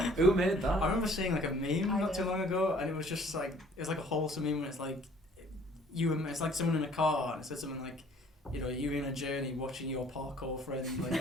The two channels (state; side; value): normal; both; correlation 0.56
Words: Who made that? I remember seeing like a meme I not too did. long ago, and it was just like it's like a wholesome meme. When it's like it's like someone in a car, and it said something like, you know, you in a journey watching your parkour friend